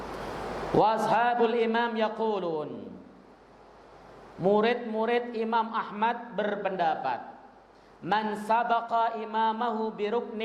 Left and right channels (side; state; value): both; identical; correlation 1.00